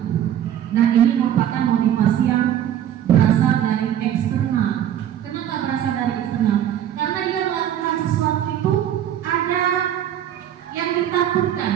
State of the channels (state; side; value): quieter; left; 10.6 dB